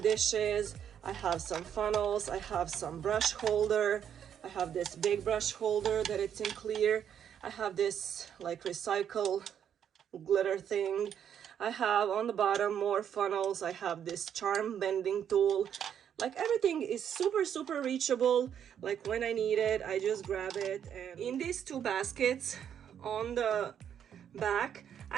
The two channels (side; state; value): left; quieter; 8.9 dB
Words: I have some funnels, I have some brush holder, I have this big brush holder that it's in clear, I have this like recycle glitter thing, I have on the bottom more funnels, I have this charm bending tool. Like everything is super reachable. Like when I need it, I just grab it. And in these two baskets on the back,